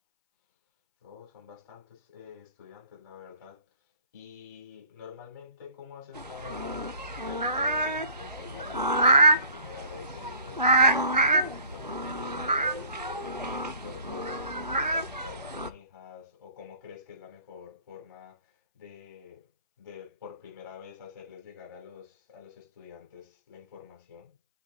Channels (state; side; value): inverted; both; correlation -0.54